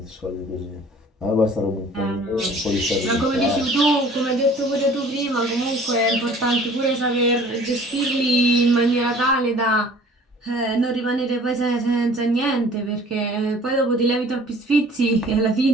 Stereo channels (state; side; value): normal; both; correlation 0.50